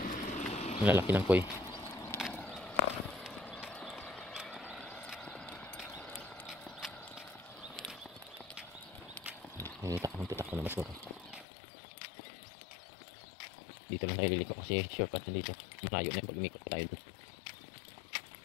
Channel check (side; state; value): right; drops out; at 11.5 s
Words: Ang lalaki ng koi. Tutak ko na mas mura. Dito lang tayo liliko kasi shortcut na dito. Malayo na yung pag umikot tayo dun.